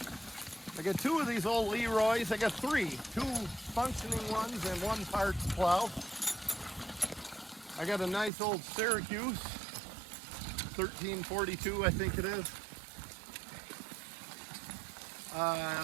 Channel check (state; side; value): drops out; left; at 8.3 s